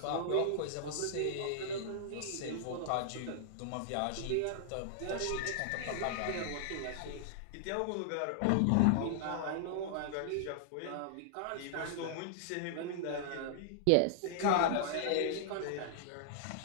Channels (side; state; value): both; different; correlation -0.01